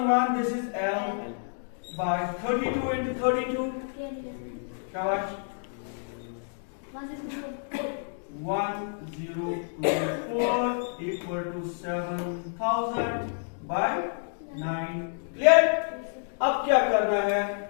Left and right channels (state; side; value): silent; right; digital silence